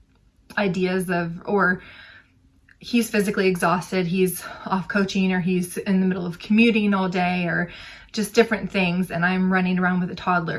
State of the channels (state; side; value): identical; both; correlation 1.00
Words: ideas of, or he's physically exhausted, he's off coaching, or he's in the middle of commuting all day, or just different things, and I'm running around with a